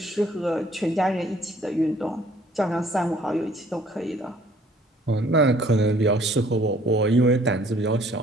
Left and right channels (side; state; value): both; normal; correlation 0.59